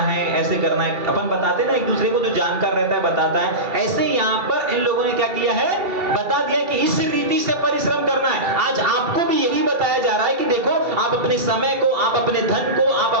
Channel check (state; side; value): late; left; 2.3 ms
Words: ऐसे करना है। अपन बताते ना एक दूसरे को, जो जानकार रहता है बताता है। ऐसे यहाँ पर इन लोगों ने क्या किया है? बता दिया कि इस रीति से परिश्रम करना है। आज आपको भी यही बताया जा रहा है कि देखो, आप अपने समय को, आप अपने धन को, आप